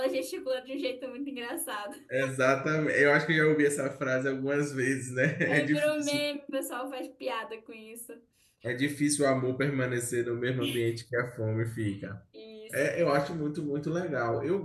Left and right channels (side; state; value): both; identical; correlation 1.00